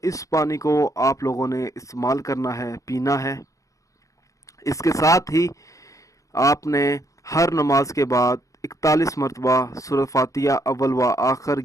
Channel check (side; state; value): right; late; 0.16 ms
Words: इस पानी को आप लोगों ने इस्तेमाल करना है, पीना है। इसके साथ ही आपने हर नमाज के बाद 41 मरतबा सूरह फातिहा अव्वल व आखिर